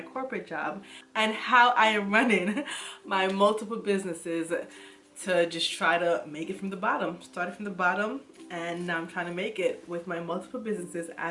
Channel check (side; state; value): both; identical; correlation 1.00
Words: corporate job and how I am running my multiple businesses to just try to make it from the bottom. Started from the bottom and now I'm trying to make it with my multiple businesses